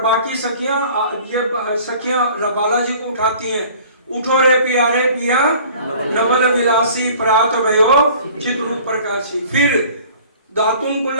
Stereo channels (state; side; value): inverted; both; correlation -0.49